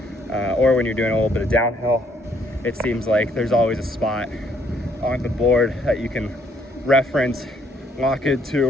or when you're doing a little bit of downhill. It seems like there's always a spot on the board that you can reference, lock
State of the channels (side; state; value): both; normal; correlation 0.68